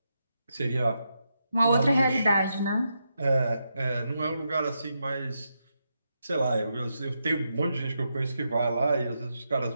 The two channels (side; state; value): both; inverted; correlation -0.84